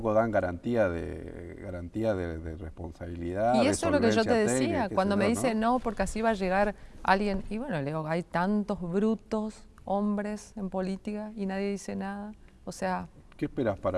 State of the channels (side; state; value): both; identical; correlation 1.00